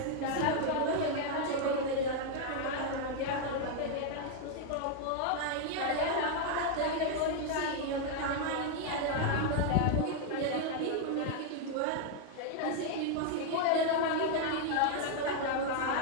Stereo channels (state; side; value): different; both; correlation 0.00